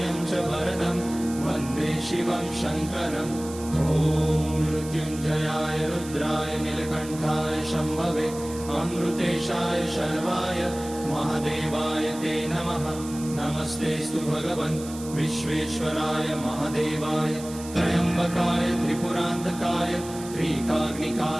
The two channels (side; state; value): right; noise; hiss, 15 dB below the sound